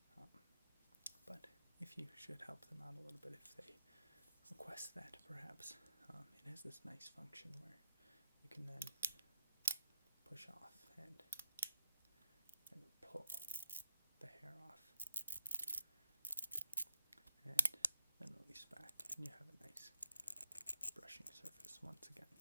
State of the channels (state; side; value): inverted; both; correlation -0.77